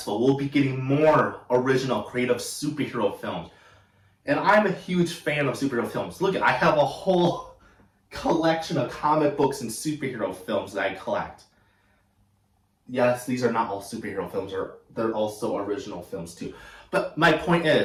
we'll be getting more original, creative superhero films. And I'm a huge fan of superhero films. Look, I have a whole collection of comic books and superhero films that I collect. Yes, these are not all superhero films, they're also original films too. But my point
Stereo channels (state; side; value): identical; both; correlation 1.00